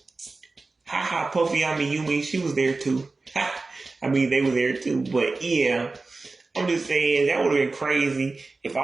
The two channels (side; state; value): left; quieter; 3.6 dB